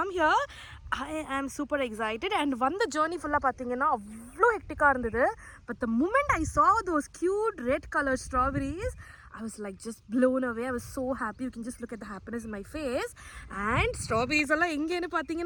here. I am super excited and வந்த journey full-ஆ பாத்தீங்கன்னா அவ்வளோ ஹெக்டிக்கா இருந்தது. But the moment I saw those cute red colored strawberries, I was like just blown away. I was so happy. You can just look at the happiness in my face. And strawberries alla engenu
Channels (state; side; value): identical; both; correlation 1.00